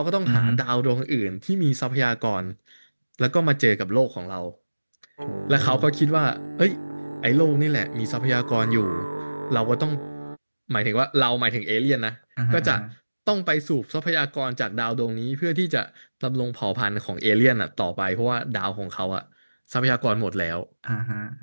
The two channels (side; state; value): both; inverted; correlation -1.00